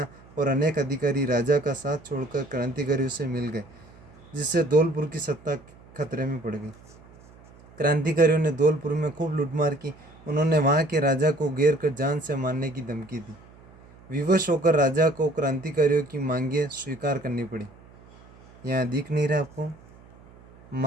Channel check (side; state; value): right; noise; hum, 24 dB below the sound